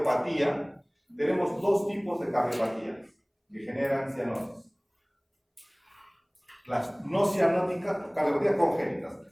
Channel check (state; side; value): identical; both; correlation 1.00